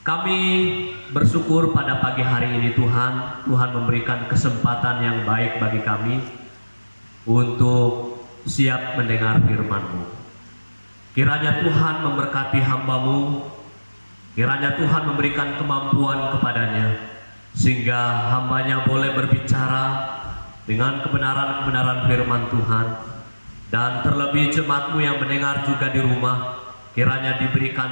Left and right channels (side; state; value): both; inverted; correlation -1.00